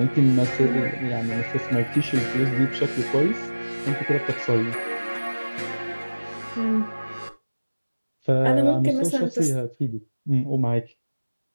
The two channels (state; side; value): inverted; both; correlation -1.00